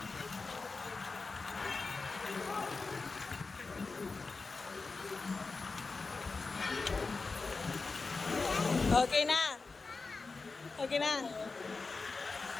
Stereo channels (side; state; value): right; quieter; 4.1 dB